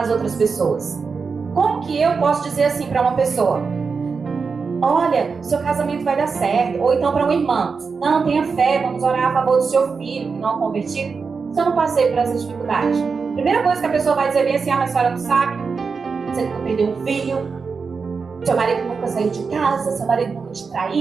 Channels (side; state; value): left; quieter; 5.1 dB